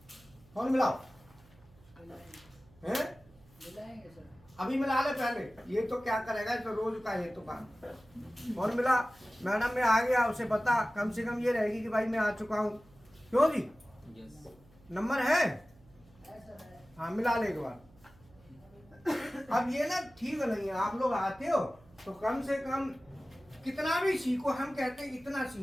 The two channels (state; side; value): noise; right; hum, 27 dB below the sound